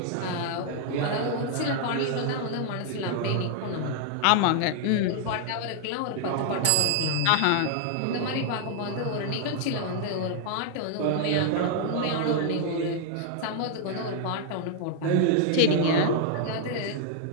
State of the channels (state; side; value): different; both; correlation 0.00